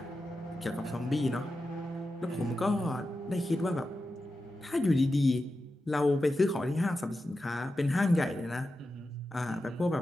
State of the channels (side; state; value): both; normal; correlation 0.91